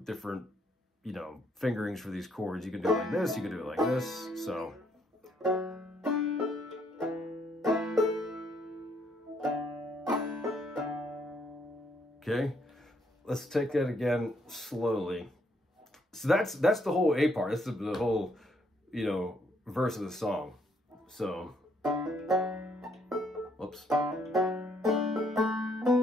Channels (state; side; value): normal; both; correlation 0.70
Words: you know, fingerings for these chords. You can do it like this, you can do it like this, so. Okay, let's take that again slowly. So that's the whole A part. That's the whole, you know, verse of the song. So, whoops.